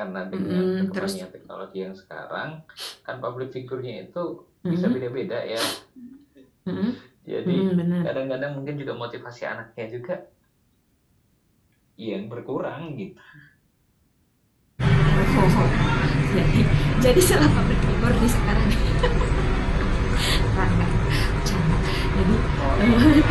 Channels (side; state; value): both; identical; correlation 1.00